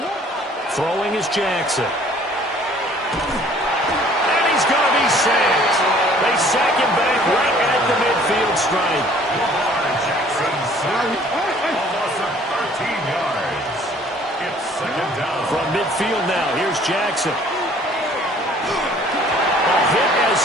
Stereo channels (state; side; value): normal; both; correlation 0.55